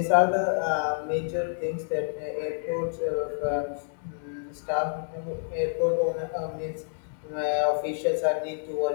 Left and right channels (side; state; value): right; silent; digital silence